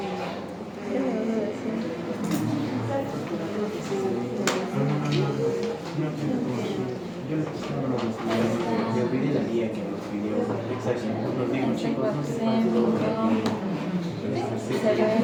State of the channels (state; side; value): identical; both; correlation 1.00